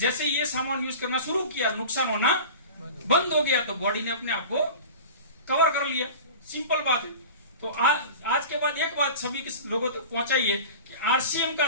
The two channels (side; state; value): both; inverted; correlation -0.35